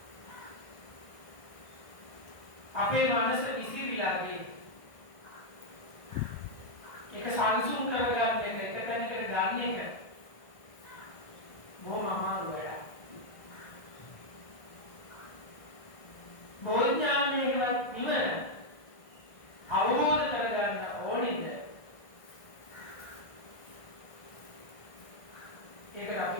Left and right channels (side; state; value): right; late; 1.6 ms